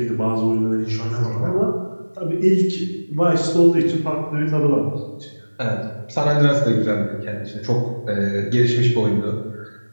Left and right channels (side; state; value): both; inverted; correlation -1.00